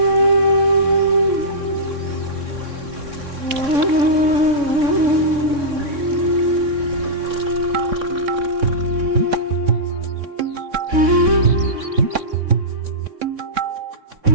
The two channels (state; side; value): late; left; 3.6 ms